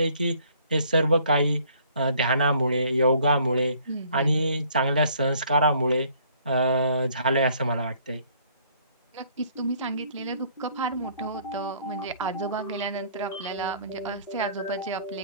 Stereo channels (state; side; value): inverted; both; correlation -0.60